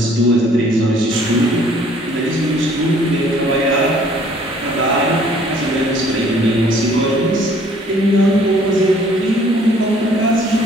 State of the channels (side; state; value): both; normal; correlation 0.58